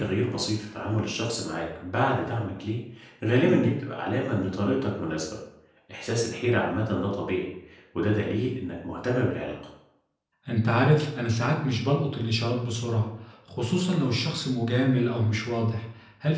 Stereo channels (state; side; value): identical; both; correlation 1.00